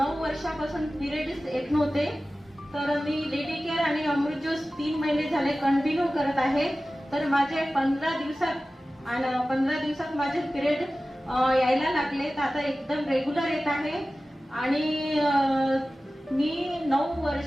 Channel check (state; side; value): normal; both; correlation 0.96